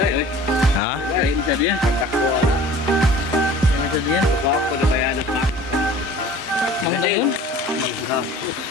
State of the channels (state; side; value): normal; both; correlation 0.46